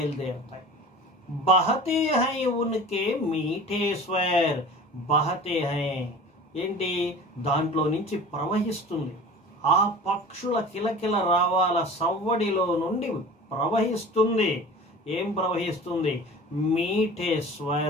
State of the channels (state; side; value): normal; both; correlation 0.40